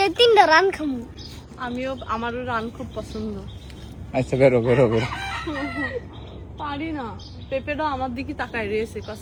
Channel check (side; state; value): both; identical; correlation 1.00